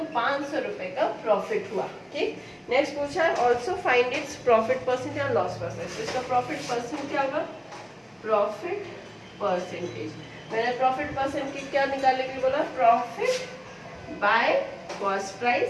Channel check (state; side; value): identical; both; correlation 1.00